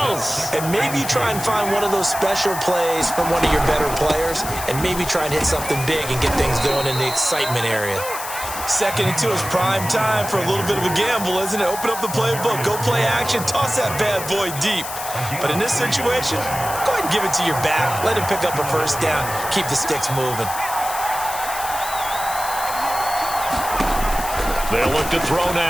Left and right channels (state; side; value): noise; left; hiss, 8 dB below the sound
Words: else. and maybe try and find one of those special plays from one of your better players, and maybe try and hit something big and get things going in the excitement area. Second and 2 is prime time for a little bit of a gamble, isn't it? Open up the playbook, go play action, toss that bad boy deep. But in this situation, go ahead and give it to your back. Let him pick up a first down. Keep the sticks moving. They'll look to throw